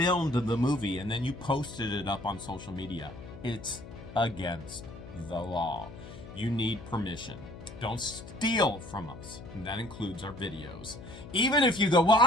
the movie and then you posted it up on social media. It's against the law. You need permission. Don't steal from us. And that includes our videos. Even if you go, well,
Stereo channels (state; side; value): noise; left; hum, 14 dB below the sound